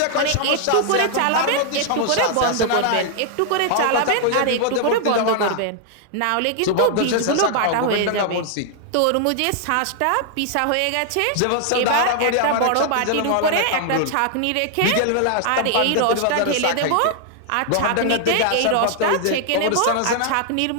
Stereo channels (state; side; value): different; both; correlation 0.00